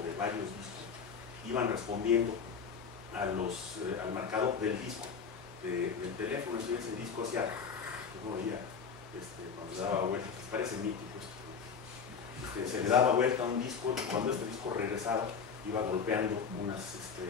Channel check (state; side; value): quieter; right; 6.0 dB